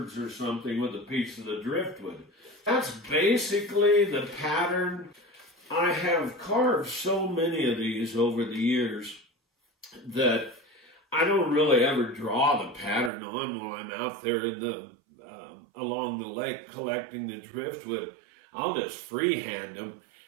or something with a piece of the driftwood. That's basically the pattern. I have carved so many of these over the years that I don't really ever draw the pattern on while I'm out there in the along the lake collecting the driftwood. I'll just freehand them,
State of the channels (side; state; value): left; drops out; at 13.1 s